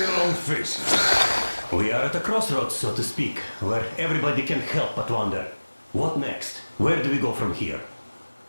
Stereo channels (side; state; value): both; inverted; correlation -1.00